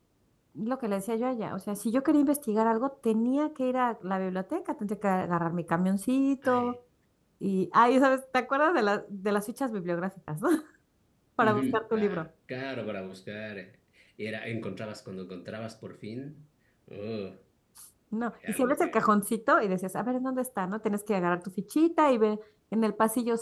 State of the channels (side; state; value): both; identical; correlation 1.00